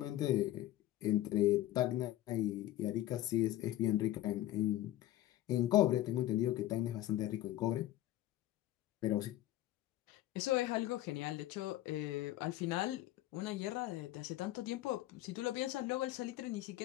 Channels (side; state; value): right; quieter; 14.6 dB